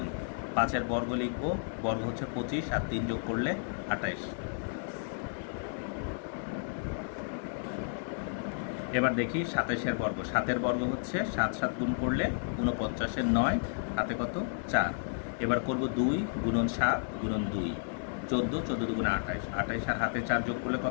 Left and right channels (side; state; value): right; silent; digital silence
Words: 5-এর বর্গ লিখব, বর্গ হচ্ছে 25 আর 3 যোগ করলে 28। এবার দেখি 27-এর বর্গ। 7-এর বর্গ হচ্ছে 7 7 গুণ করলে 49-এর 9, হাতে কত? 4। এবার করব 2 গুণন 7 গুণন 2 14, 14 দুগুণে 28, 28 আর হাতে 4 যোগ করলে